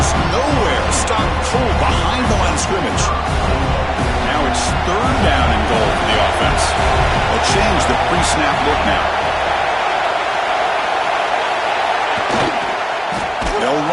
nowhere. Stopped cold behind the line of scrimmage. Now it's third down and goal for the offense. They'll change the pre-snap look now. They'll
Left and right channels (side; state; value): both; identical; correlation 1.00